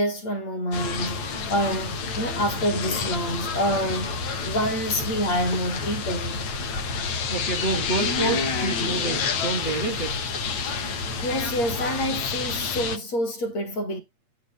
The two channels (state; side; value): late; right; 8.5 ms